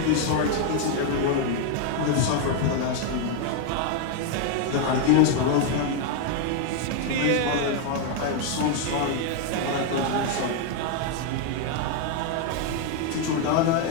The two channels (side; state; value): both; different; correlation 0.01